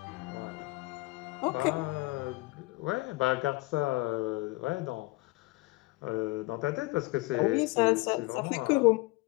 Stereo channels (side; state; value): right; quieter; 22.1 dB